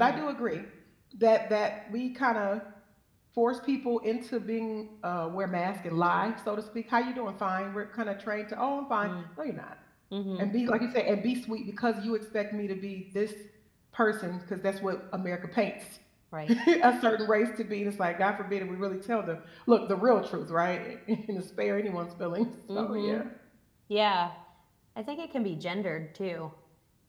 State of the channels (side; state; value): both; identical; correlation 1.00